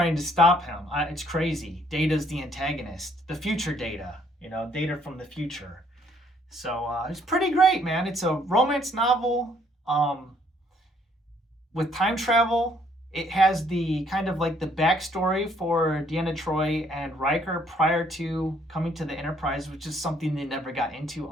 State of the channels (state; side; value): normal; both; correlation 0.65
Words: to stop him. It's crazy. Data's the antagonist. The future Data, you know, Data from the future. So it's pretty great, man. It's a romance novel with time travel. It has the kind of like the backstory for Deanna Troi and Riker prior to coming to the Enterprise, which is something they never got into